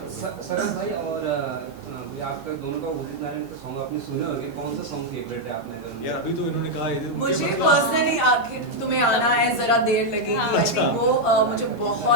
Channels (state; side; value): normal; both; correlation 0.00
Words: Saras भाई और आपका दोनों का उदित नारायण का सॉन्ग आपने सुने होंगे, कौन सा सॉन्ग फेवरेट है आपने? यार अभी तो इन्होंने कहा मुझे पर्सनली आखिर तुम्हें आना है जरा देर लगेगी, आई थिंक वो मुझे